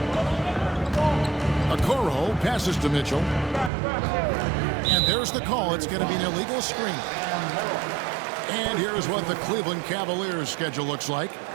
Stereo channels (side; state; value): left; drops out; at 3.7 s